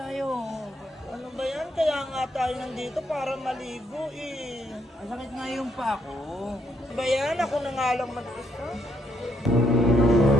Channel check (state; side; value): normal; both; correlation 0.73